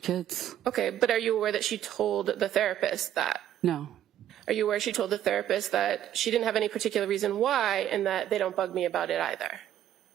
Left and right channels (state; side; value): quieter; left; 11.2 dB